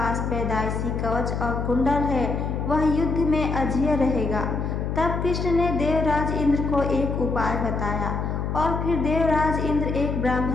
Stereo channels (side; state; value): left; noise; hum, 2 dB below the sound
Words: पैदाइशी कवच और कुंडल है वह युद्ध में अजेय रहेगा। तब कृष्ण ने देवराज इंद्र को एक उपाय बताया और फिर देवराज इंद्र एक